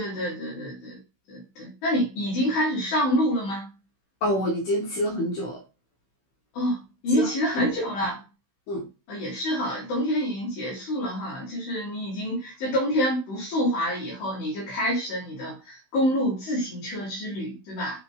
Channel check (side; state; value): right; late; 16 ms